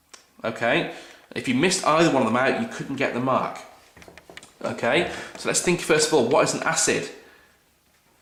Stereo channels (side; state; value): both; identical; correlation 1.00